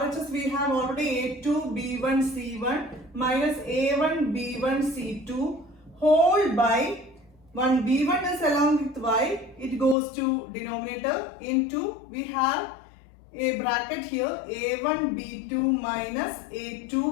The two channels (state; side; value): drops out; right; at 10.0 s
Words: we have already a2 b1 c1 minus a1 b1 c2 whole by 1 b1 is along with y, it goes to denominator into, we have a bracket here, a1 b2 minus a2